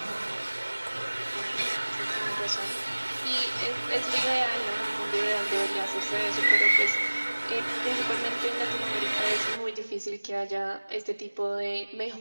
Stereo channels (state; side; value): inverted; both; correlation -1.00